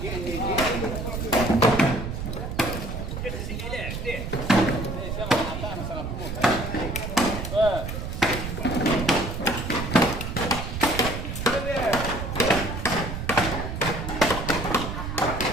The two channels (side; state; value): right; noise; rumble, 5 dB below the sound